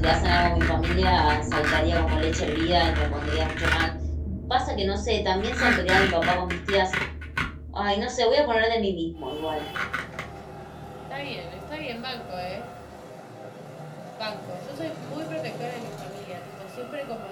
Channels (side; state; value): both; identical; correlation 1.00